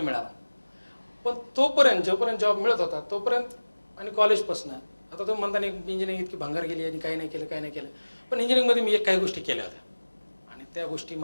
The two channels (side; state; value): both; inverted; correlation -1.00